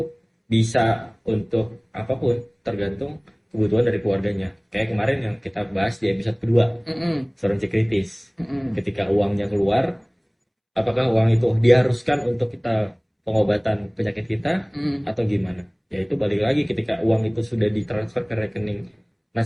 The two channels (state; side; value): identical; both; correlation 1.00